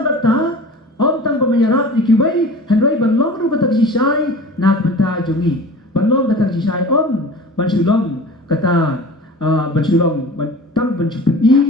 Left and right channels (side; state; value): both; normal; correlation 0.39